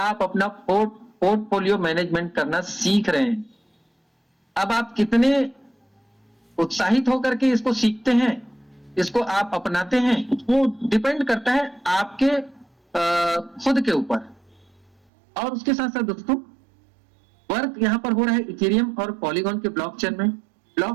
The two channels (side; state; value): left; drops out; at 14.9 s